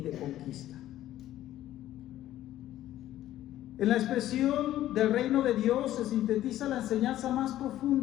de conquista. En la expresión del reino de Dios se sintetiza la enseñanza más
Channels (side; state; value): right; quieter; 13.4 dB